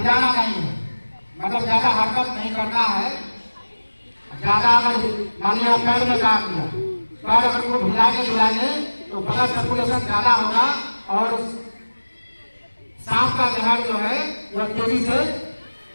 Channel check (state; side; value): inverted; both; correlation -1.00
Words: नहीं है, मतलब ज्यादा हरकत नहीं करना है। ज्यादा अगर मान लिया पैर में काट लिया, पैर अगर को हिलाएंगे तो ब्लड सर्कुलेशन ज्यादा होगा और सांप का जहर जो है वह तेजी से